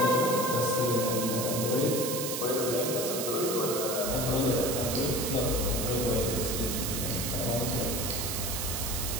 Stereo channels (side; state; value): right; noise; hiss, 3 dB below the sound